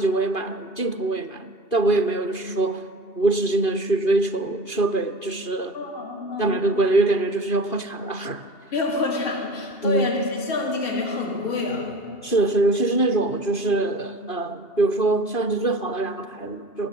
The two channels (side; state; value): right; late; 2.5 ms